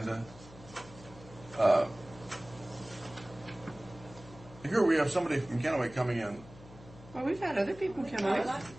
Here we have somebody from Kennewick coming in. Well, we've had other people come out.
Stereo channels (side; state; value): left; noise; hum, 19 dB below the sound